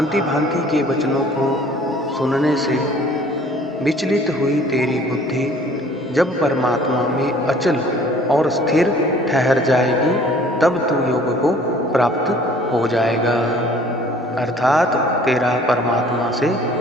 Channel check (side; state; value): both; normal; correlation 0.53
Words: भांति के वचनों को सुनने से विचलित हुई तेरी बुद्धि जब परमात्मा में अचल और स्थिर ठहर जाएगी, तब तू योग को प्राप्त हो जाएगा, अर्थात तेरा परमात्मा से